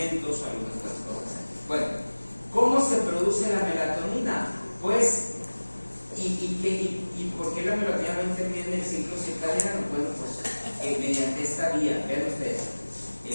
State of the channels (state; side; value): inverted; both; correlation -1.00